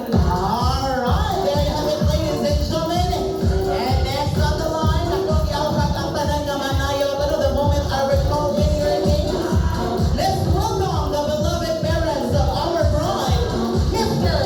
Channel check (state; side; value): identical; both; correlation 1.00